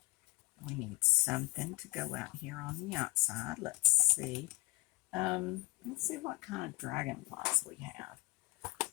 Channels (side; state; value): right; quieter; 23.1 dB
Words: We need something to go out here on the outside. Let's see. Let's see what kind of dragonflies we have.